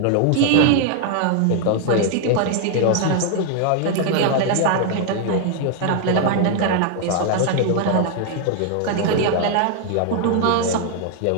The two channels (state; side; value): different; both; correlation 0.00